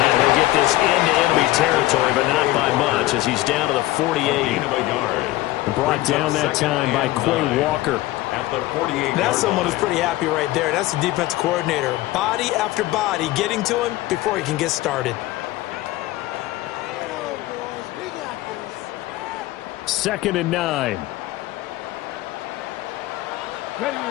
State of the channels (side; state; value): right; quieter; 17.3 dB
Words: he'll get this into enemy territory, but not by much, as he's down to the 48. Brought down that time by Quay Walker. At the 48. That's someone who's pretty happy right there. That's the defensive coordinator. Body after body getting to him before he can get started. 2nd and 9. Ready,